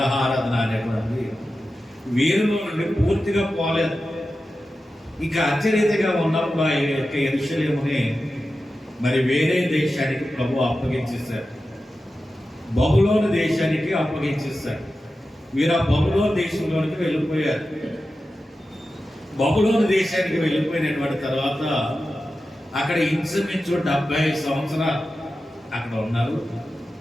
అనేటువంటి వీరిలో నుండి పూర్తిగా పోలేదు. ఇక అత్యరీతిగా ఉన్నప్పుడు ఆ యొక్క యెరూషలేముని మరి వేరే దేశానికి ప్రభు అప్పగించేశారు. బబులోను దేశానికి అప్పగించేశారు. వీరు ఆ బబులోను దేశంలోనికి వెళ్ళిపోయారు. బబులోను దేశానికి వెళ్ళిపోయినటువంటి తర్వాత అక్కడ ఇంచుమించు 70 సంవత్సరాలు అక్కడ ఉన్నారు.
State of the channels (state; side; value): normal; both; correlation 0.93